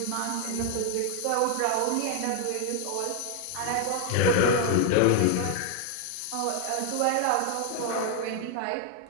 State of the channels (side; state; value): both; different; correlation 0.00